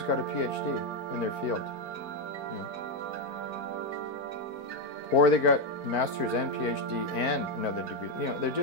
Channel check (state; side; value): late; right; 4.5 ms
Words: got a PhD in their field, you know. Or they got master's and PhD and another degree. You know, they're